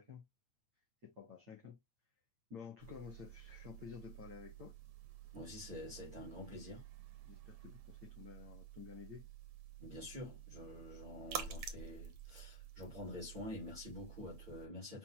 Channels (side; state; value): left; late; 8.8 ms